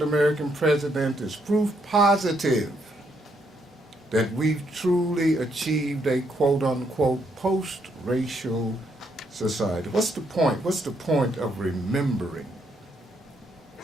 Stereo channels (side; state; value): both; normal; correlation 0.74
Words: president is proof positive that we've truly achieved a quote-unquote post-racial society. What's the point? What's the point of remembering